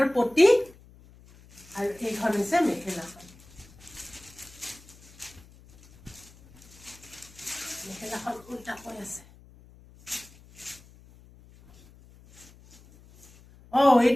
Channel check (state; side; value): noise; left; hum, 24 dB below the sound